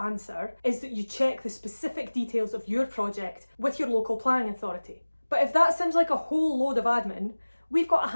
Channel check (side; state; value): both; inverted; correlation -1.00